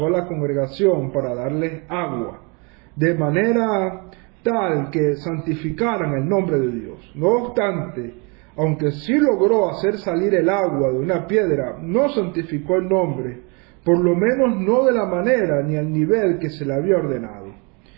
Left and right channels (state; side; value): quieter; left; 31.7 dB